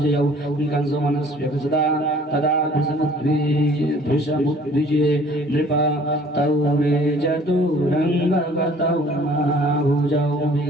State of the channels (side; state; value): both; normal; correlation 0.54